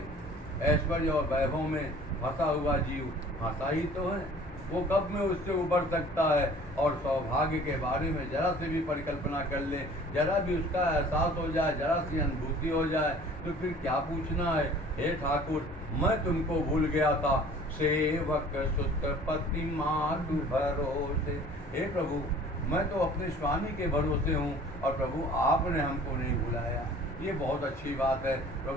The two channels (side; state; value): both; normal; correlation 0.49